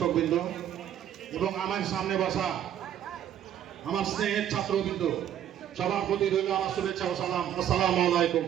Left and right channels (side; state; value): left; quieter; 10.5 dB